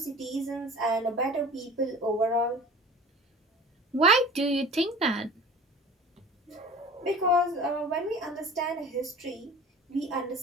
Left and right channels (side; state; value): both; normal; correlation 0.41